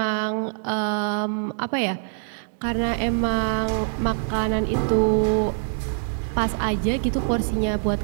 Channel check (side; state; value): left; silent; digital silence